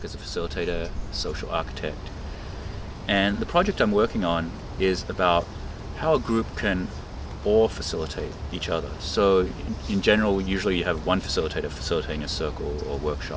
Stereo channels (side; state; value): both; identical; correlation 1.00